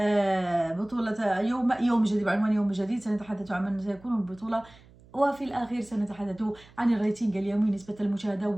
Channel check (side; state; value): right; noise; hum, 25 dB below the sound